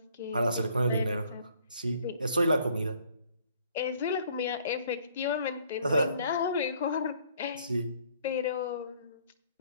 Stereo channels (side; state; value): both; inverted; correlation -0.60